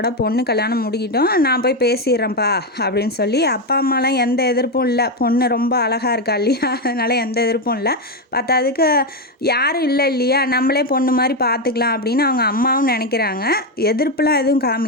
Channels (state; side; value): normal; both; correlation 0.08